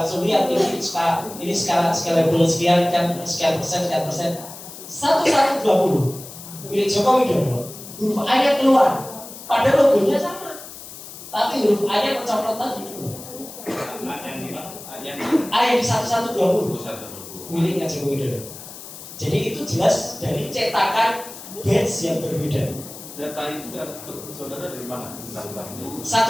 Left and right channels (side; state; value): left; noise; hiss, 14 dB below the sound